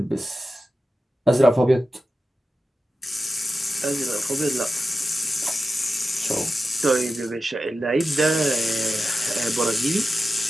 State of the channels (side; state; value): both; normal; correlation 0.91